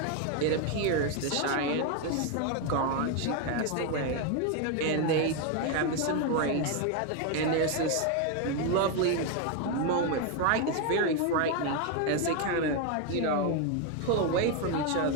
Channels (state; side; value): different; both; correlation 0.02